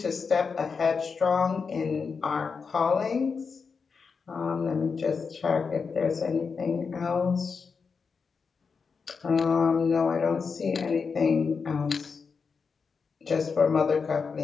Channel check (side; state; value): right; quieter; 5.3 dB